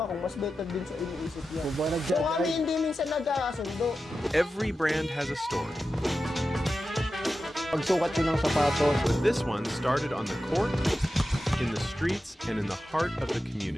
mas better dun sa iniisip niya. So kami hindi minsan nagkakasundo. Every brand has a story. Pagsukat yun ng sapatos. But this one started on the court, in the streets, and in the heart of the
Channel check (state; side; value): normal; both; correlation 0.92